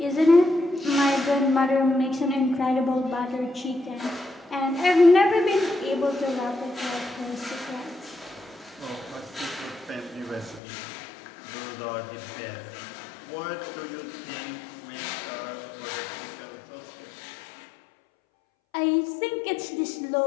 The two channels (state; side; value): drops out; right; at 10.6 s